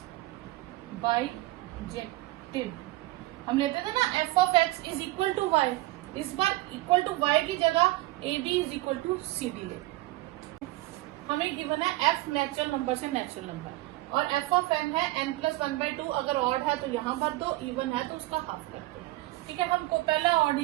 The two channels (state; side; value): quieter; left; 18.8 dB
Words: बाइजेक्टिव। हम लेते थे ना f of x is equal to y, इस बार इक्वल टू y की जगह A B is equal to C D ले। हमें गिवन है f नेचुरल नंबर से नेचुरल नंबर और f ऑफ n है n प्लस 1/2। अगर ऑड है तो यहाँ भर दो, इवन है तो उसका हाफ कर दो। ठीक है, हमको पहला ऑड